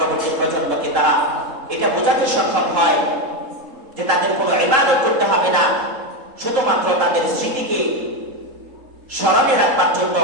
প্রজন্মকে তারা এটা বোঝাতে সক্ষম হয় যে তাদের কোনো ইবাদত করতে হবে না, শুধুমাত্র তাদের স্মৃতিকে স্মরণে রাখবার জন্য,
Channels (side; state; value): left; late; 3.7 ms